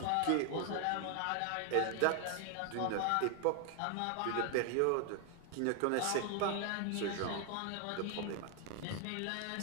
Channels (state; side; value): different; both; correlation 0.00